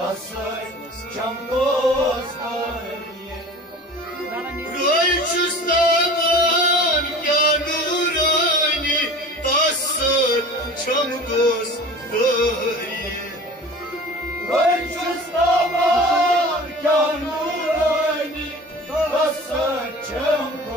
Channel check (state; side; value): normal; both; correlation 0.40